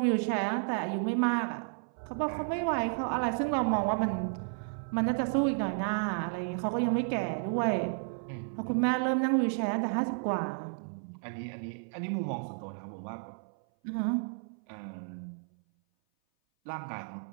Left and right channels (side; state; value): left; silent; 56 dB below the other